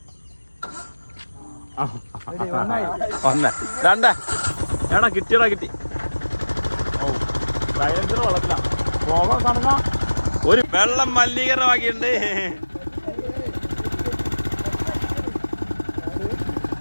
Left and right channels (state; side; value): inverted; both; correlation -1.00